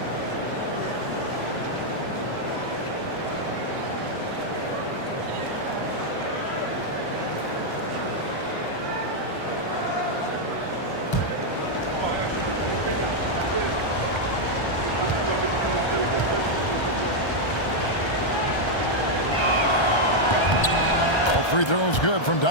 Free throws good from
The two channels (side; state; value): right; late; 1.3 ms